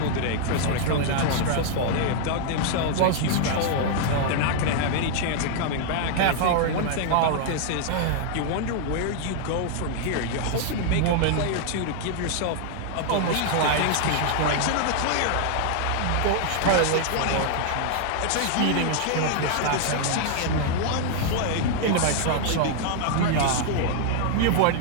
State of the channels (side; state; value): both; different; correlation 0.00